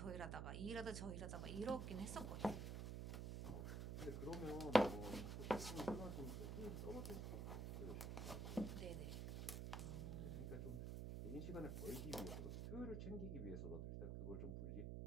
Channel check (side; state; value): right; noise; hum, 2 dB below the sound